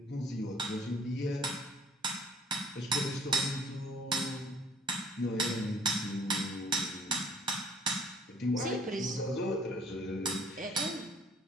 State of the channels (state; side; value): normal; both; correlation 0.55